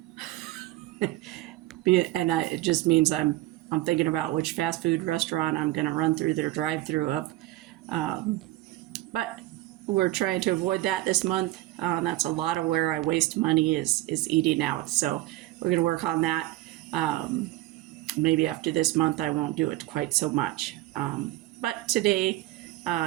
And it just means I'm thinking about which fast food restaurant I'm going to run through their drive-through of. But we're trying to avoid that this month. That's a lot of where I waste money is eating out. So we're going to work on that. Maybe after this month, I won't do it quite so much. But today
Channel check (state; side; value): quieter; left; 17.5 dB